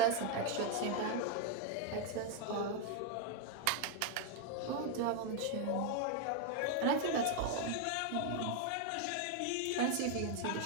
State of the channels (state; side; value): different; both; correlation 0.00